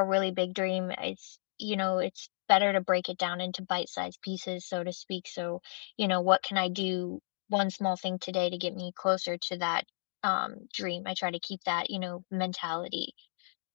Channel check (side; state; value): right; silent; digital silence